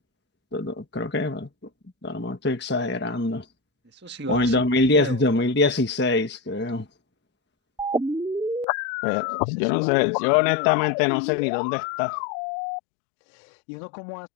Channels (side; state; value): right; drops out; at 8.7 s